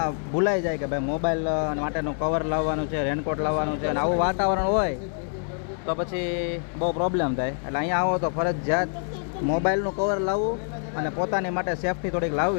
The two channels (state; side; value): silent; right; 61 dB below the other